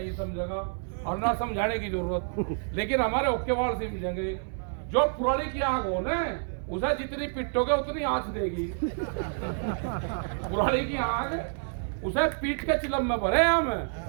समझेगा, और ना समझाने की जरूरत। लेकिन हमारे ओके वाल से मिलेंगे। जो पुरानी की आग हो ना, उसे जितनी पिटोगे उतनी आंच देगी। पुरानी की आग उसे पीट के चिलम में भरे हम।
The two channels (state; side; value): silent; left; 59 dB below the other